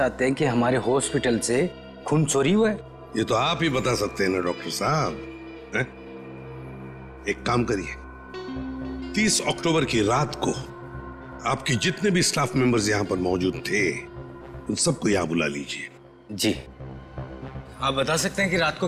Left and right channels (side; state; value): both; identical; correlation 1.00